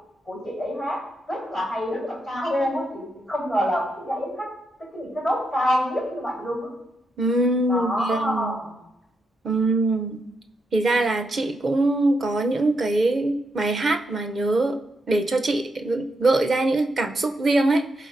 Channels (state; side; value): normal; both; correlation 0.82